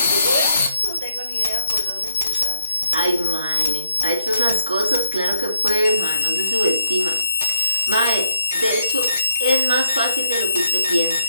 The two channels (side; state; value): both; inverted; correlation -0.72